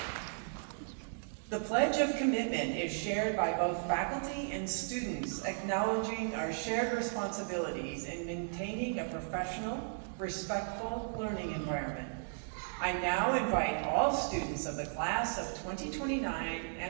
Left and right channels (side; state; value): left; silent; digital silence